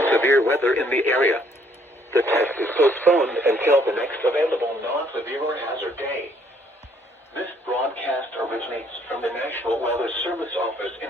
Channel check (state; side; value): normal; both; correlation 0.65